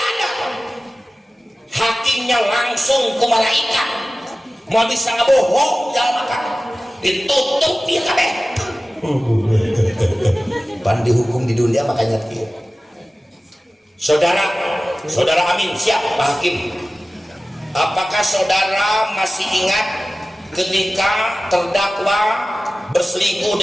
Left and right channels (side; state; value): both; normal; correlation 0.97